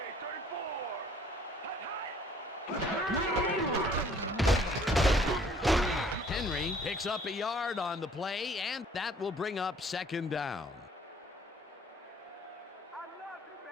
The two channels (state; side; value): normal; both; correlation 0.57